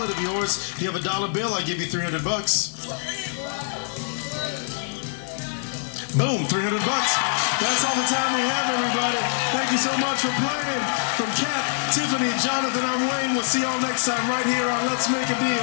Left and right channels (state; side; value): silent; right; 62 dB below the other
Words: of yours, you have a dollar bill. I give you 300 bucks. Boom, 300 bucks. That's all the time we have, everybody. Thank you so much for playing. From Kat, Tiffany, Jonathan, I'm Wayne. We'll see y'all next time right here on Let's Make a